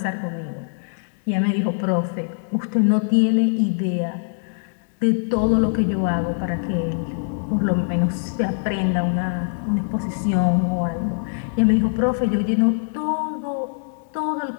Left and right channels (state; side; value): silent; right; digital silence